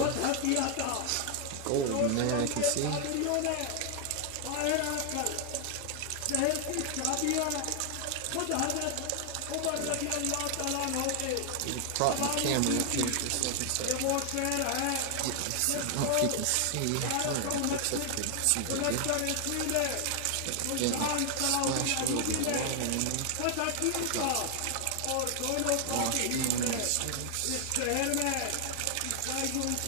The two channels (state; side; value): different; both; correlation 0.00